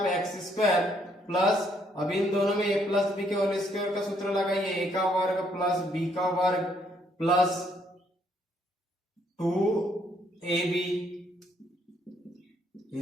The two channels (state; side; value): normal; both; correlation 0.70